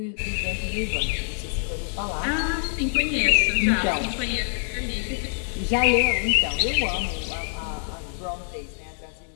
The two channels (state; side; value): silent; right; digital silence